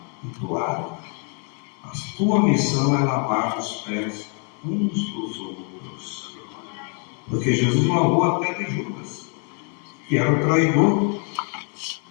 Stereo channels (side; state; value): right; quieter; 38.3 dB